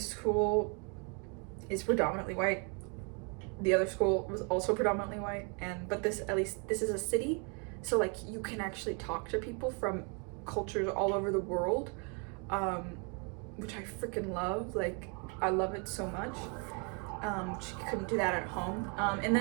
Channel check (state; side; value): quieter; left; 35.7 dB